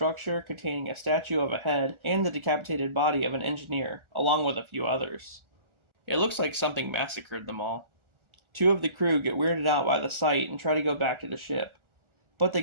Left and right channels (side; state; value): left; late; 1.4 ms